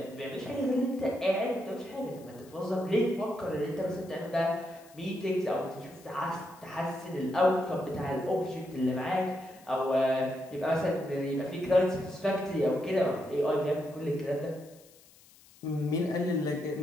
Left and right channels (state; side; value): noise; left; hiss, 25 dB below the sound